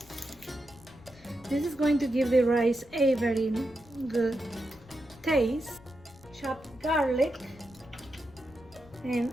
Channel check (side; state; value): left; noise; rumble, 23 dB below the sound